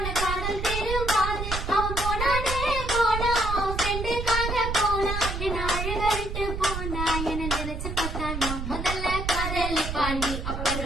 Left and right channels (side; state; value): right; noise; rumble, 4 dB below the sound